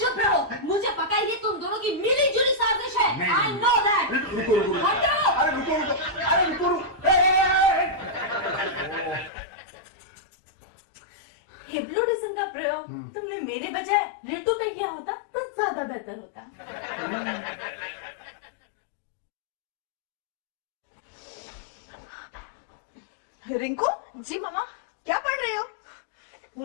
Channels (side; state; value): right; drops out; at 9.3 s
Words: रहो, मुझे पता है ये तुम दोनों की मिली जुली साजिश है। I know that. रुको रुको रुको। हटो। अरे रुको रुको, अरे रुको रुको। हिप्नोटिज्म का प्रयोग तुमने मेरे बजाय रितु पे किया होता तो ज्यादा बेहतर होता। रिंकू जी मामा। क्या पढ़ रही हो?